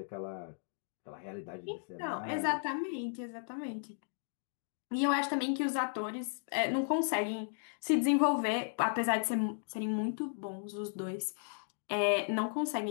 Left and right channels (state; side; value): silent; right; digital silence